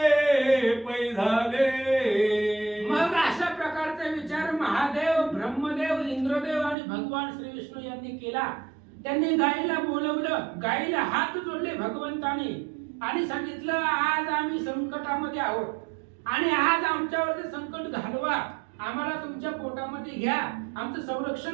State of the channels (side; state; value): left; drops out; at 6.8 s